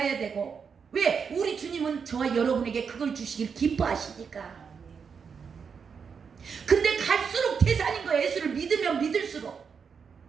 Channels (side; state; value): left; quieter; 6.2 dB